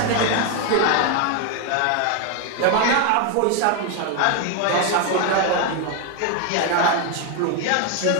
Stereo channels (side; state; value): both; different; correlation 0.01